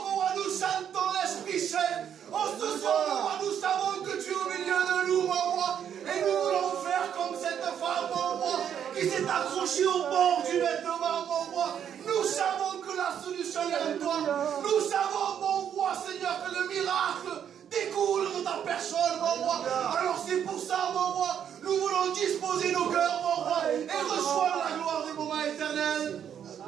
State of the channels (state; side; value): quieter; left; 8.9 dB